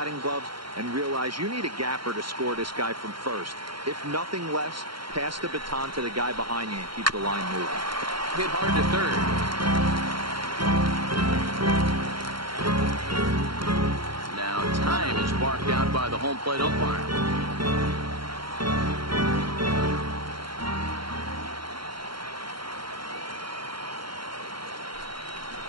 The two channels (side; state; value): left; late; 0.73 ms